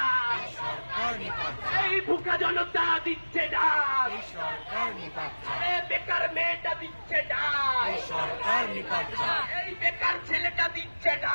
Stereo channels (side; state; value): both; inverted; correlation -1.00